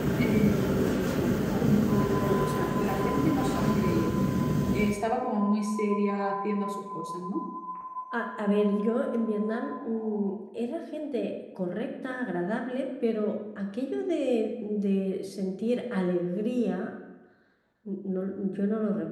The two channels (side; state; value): both; identical; correlation 1.00